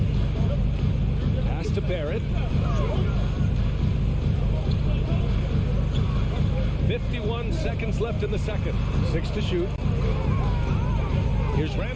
Pass to Barrett. 51 seconds left in the second. 6 to shoot. Here's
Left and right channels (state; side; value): identical; both; correlation 1.00